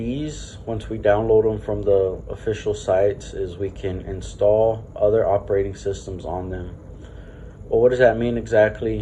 once we download them from the official sites, is we can install other operating systems on them. Well, what does that mean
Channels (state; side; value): identical; both; correlation 1.00